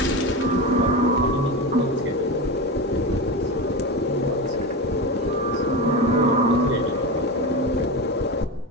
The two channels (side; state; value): both; normal; correlation 0.21